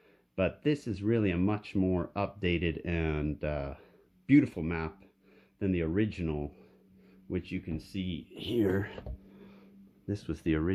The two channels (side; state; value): both; identical; correlation 1.00